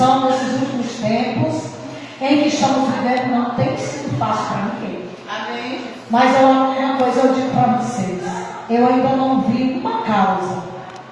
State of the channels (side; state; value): both; identical; correlation 1.00